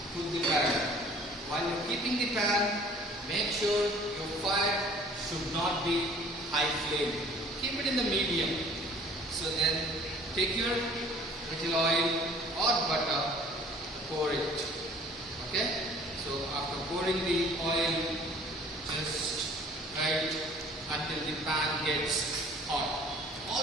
put the pan. While you're keeping the pan, make sure your fire should not be high flame. Keep it in the medium. So then take your little oil or butter, pour it. Okay? So after pouring the oil, just right until the pan gets hot.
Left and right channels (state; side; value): normal; both; correlation 0.52